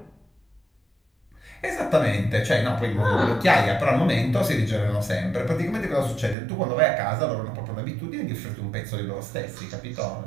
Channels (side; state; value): left; drops out; at 6.4 s